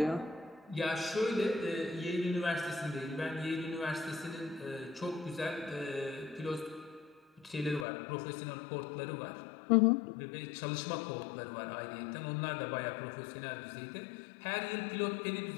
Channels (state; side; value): drops out; right; at 7.9 s